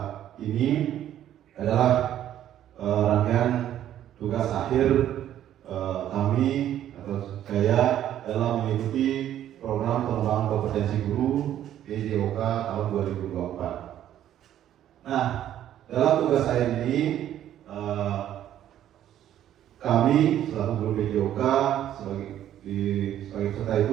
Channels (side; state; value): left; quieter; 11.4 dB